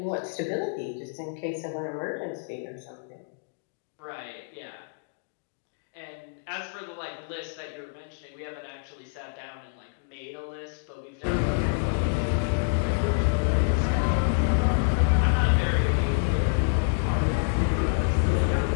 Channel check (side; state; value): right; silent; digital silence